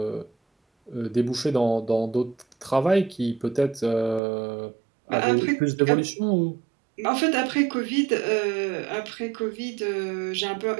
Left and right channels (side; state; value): left; drops out; at 4.2 s